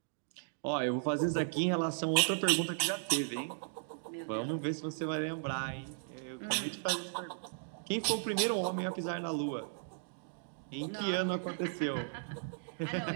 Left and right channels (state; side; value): silent; left; digital silence